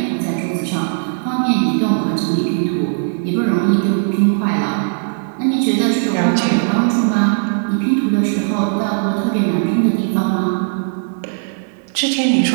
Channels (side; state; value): left; silent; digital silence